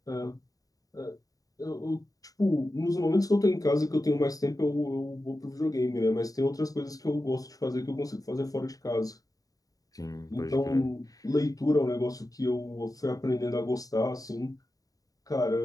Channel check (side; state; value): right; late; 0.17 ms